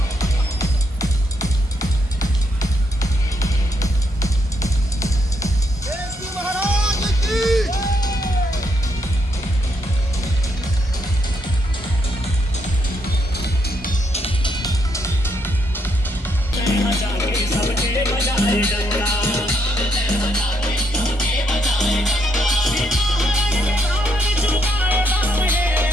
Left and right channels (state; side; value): normal; both; correlation 0.76